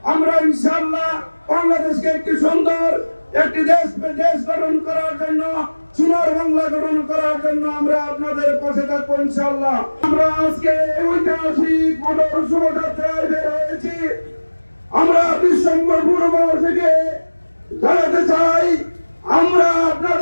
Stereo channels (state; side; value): inverted; both; correlation -1.00